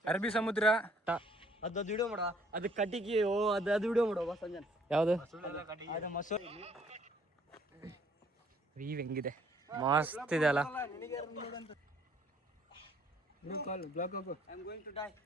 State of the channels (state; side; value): normal; both; correlation 0.62